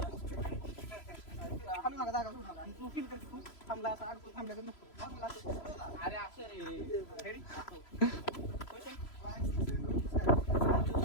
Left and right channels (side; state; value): right; late; 3.0 ms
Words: हलू नका जागा सोडू नका. आणि तू फील कर तू थांबला असं अडकून थांबल्याकडे नको. अरे असं रे. रेडी